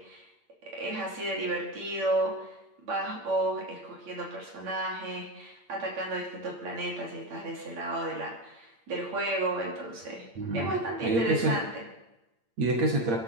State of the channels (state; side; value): late; left; 8.7 ms